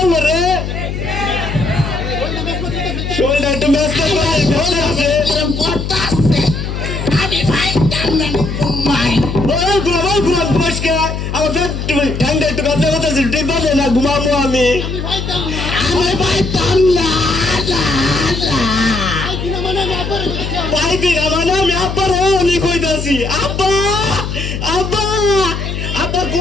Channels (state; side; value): noise; left; hum, 4 dB below the sound